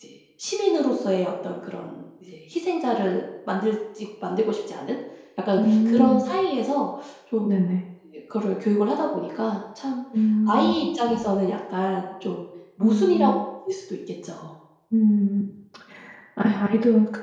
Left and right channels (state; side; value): identical; both; correlation 1.00